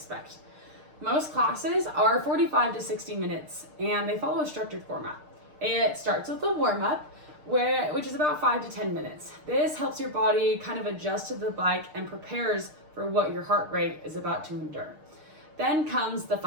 Most classes are 45 to 60 minutes and they follow a structured format. It starts with a warm-up, which is about 5 to 10 minutes. This helps your body kind of adjust to the bike and prepares for what your heart rate is about to endure. Then comes the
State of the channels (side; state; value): left; late; 6.6 ms